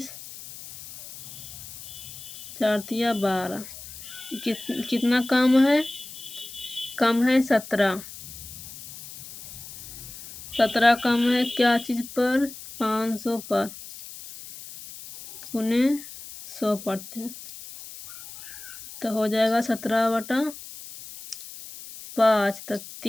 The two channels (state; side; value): noise; left; hiss, 14 dB below the sound